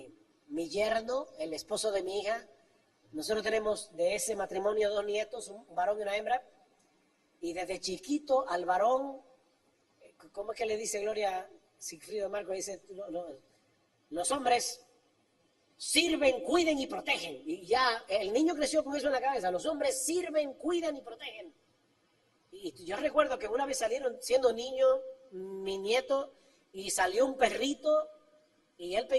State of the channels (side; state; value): both; identical; correlation 1.00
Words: yerno, el esposo de mi hija, nosotros tenemos de ese matrimonio 2 nietos, un varón y una hembra, y desde chiquito al varón, ¿cómo es que le dice Gloria Sigfrido Marco? Dice, los hombres sirven, cuiden y protegen. Y ya el niño creció con eso en la cabeza, los hombres sirven, cuidan y protegen. Y yo recuerdo que una vez salieron, siendo niño, mi nieto, y salió un perrito, y él